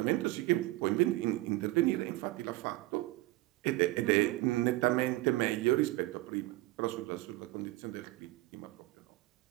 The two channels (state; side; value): quieter; left; 19.3 dB